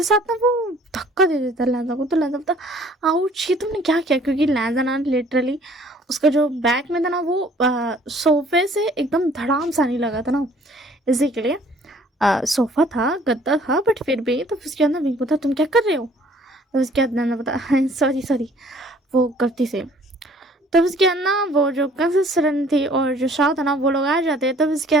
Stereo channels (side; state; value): both; normal; correlation 0.56